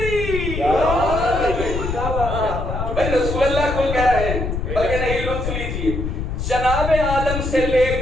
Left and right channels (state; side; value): noise; left; rumble, 4 dB below the sound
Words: بھائی رسول اللہ کو کہہ رہے ہیں، بلکہ نہیں لطف لیجیے، جناب آدم سے لے